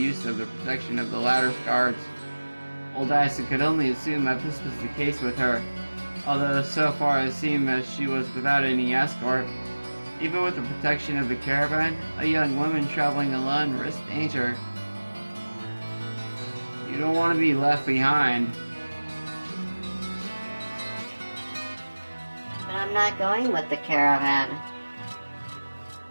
of the protection of the latter's guards. Old Dyson could only assume that this was the case with her, although so far it seemed that she was without any escort. Even with the protection of the caravan, a young woman traveling alone risked danger. You don't want to be left behind. But I'm not going with the caravan.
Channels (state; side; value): inverted; both; correlation -1.00